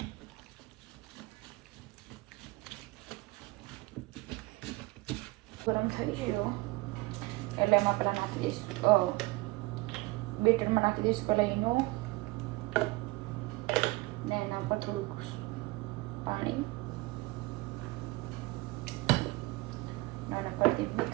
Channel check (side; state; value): left; quieter; 22.0 dB